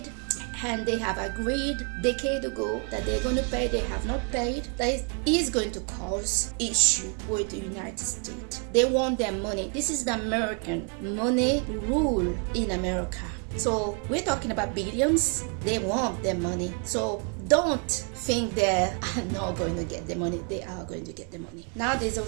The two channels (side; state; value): left; quieter; 38.4 dB